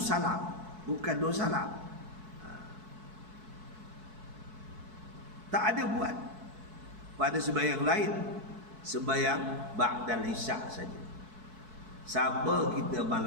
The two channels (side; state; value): left; late; 4.6 ms